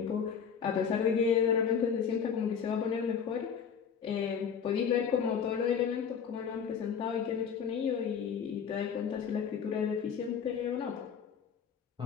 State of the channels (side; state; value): right; quieter; 7.1 dB